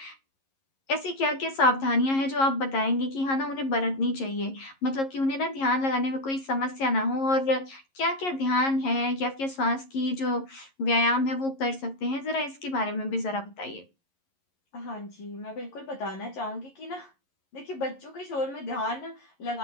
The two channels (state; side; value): late; right; 11 ms